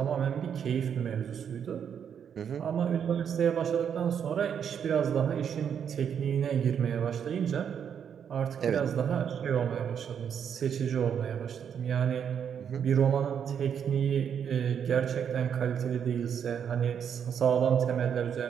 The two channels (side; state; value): left; quieter; 8.0 dB